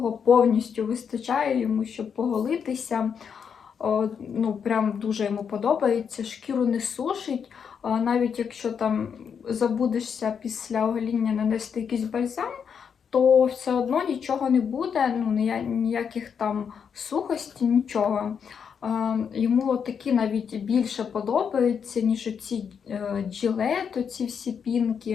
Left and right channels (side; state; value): right; quieter; 7.0 dB